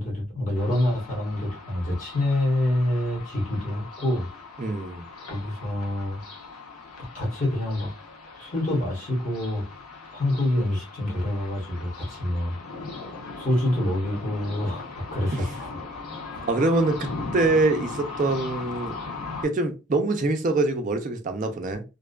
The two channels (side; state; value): both; normal; correlation 0.67